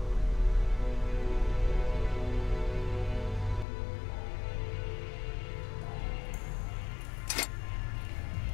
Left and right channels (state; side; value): drops out; right; at 3.7 s